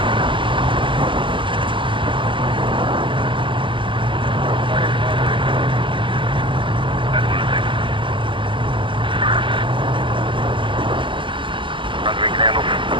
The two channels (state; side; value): late; left; 0.24 ms